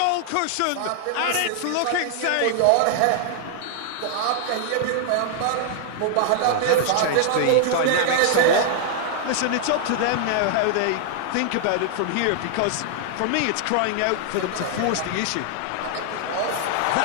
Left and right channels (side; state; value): both; different; correlation 0.00